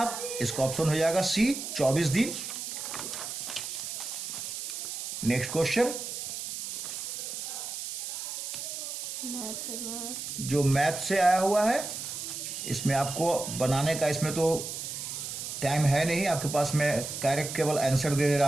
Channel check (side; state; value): right; noise; hiss, 6 dB below the sound